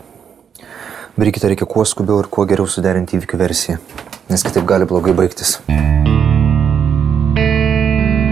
Brigitą reikia kuo skubiau ir kuo geriau suderinti įvykių versiją, nes kitaip gali blogai baigtis.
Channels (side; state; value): left; quieter; 7.7 dB